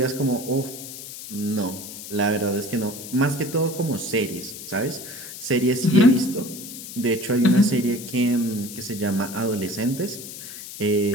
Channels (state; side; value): noise; left; hiss, 11 dB below the sound